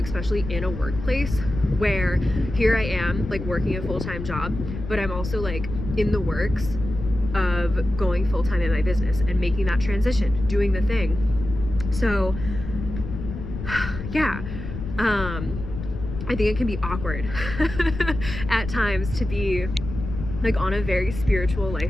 in a workplace where here I am like working a full-time job, but I'm also like in the works of going full-time in my business and making that transition, doing the thing. So yeah, I think it can be awkward at times to be like on a very spiritual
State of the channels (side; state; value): left; noise; rumble, 8 dB below the sound